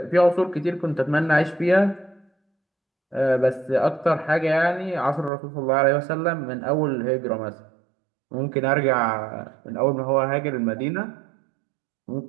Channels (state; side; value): drops out; left; at 5.3 s